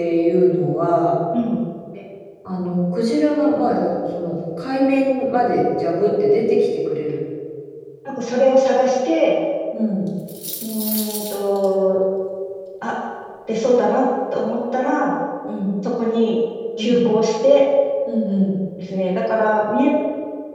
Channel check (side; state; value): both; identical; correlation 1.00